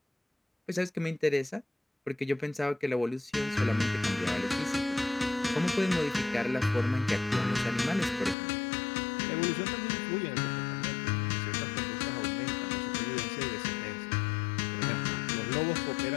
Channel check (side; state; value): right; drops out; at 8.3 s